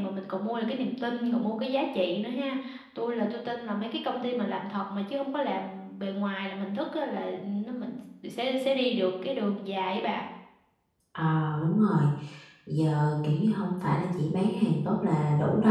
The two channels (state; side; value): identical; both; correlation 1.00